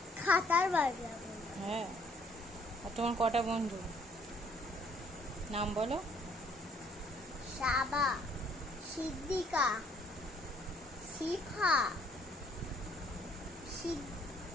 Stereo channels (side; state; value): both; normal; correlation 0.63